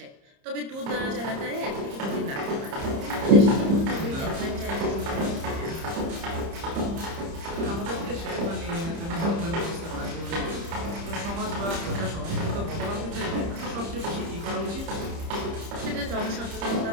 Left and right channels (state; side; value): late; left; 30 ms